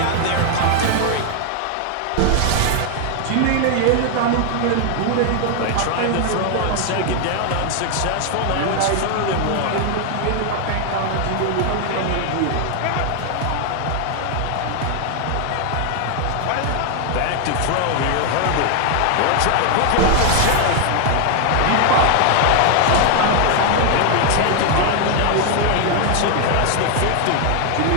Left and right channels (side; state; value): both; different; correlation 0.00